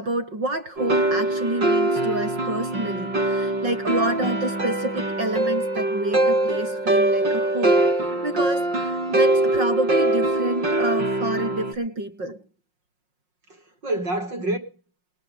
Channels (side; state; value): left; late; 5.5 ms